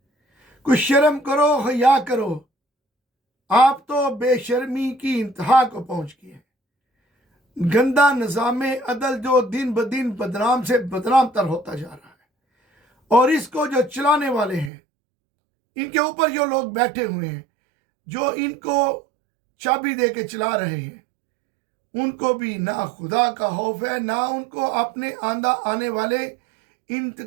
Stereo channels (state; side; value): drops out; left; at 14.7 s